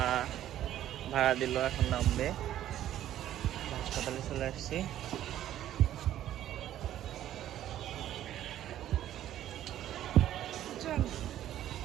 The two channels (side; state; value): left; quieter; 12.2 dB